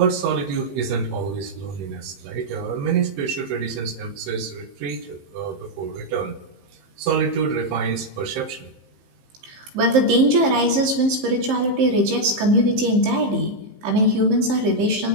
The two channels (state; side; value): late; left; 15 ms